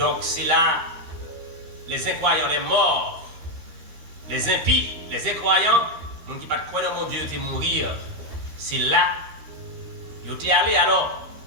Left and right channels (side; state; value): left; late; 13 ms